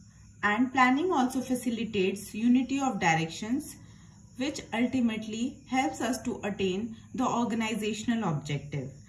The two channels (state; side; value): identical; both; correlation 1.00